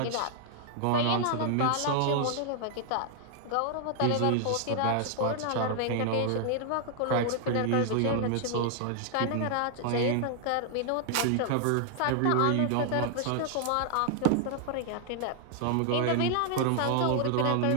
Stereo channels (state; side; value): different; both; correlation 0.00